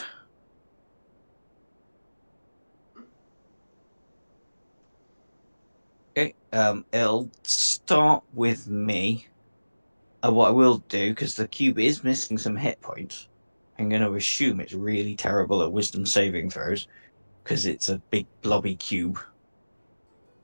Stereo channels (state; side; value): inverted; both; correlation -1.00